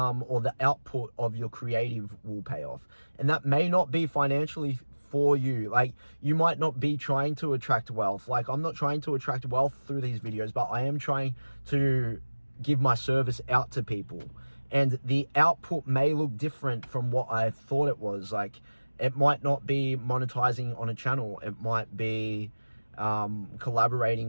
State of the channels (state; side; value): inverted; both; correlation -1.00